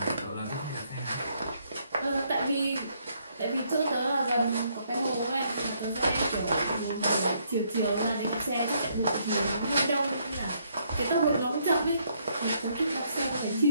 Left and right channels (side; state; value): both; inverted; correlation -0.71